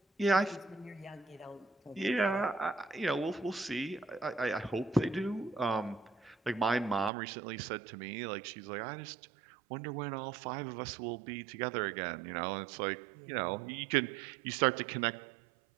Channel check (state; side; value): drops out; left; at 7.1 s